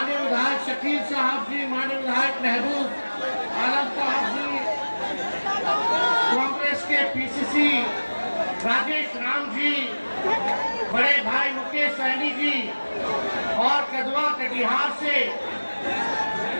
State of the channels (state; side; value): inverted; both; correlation -1.00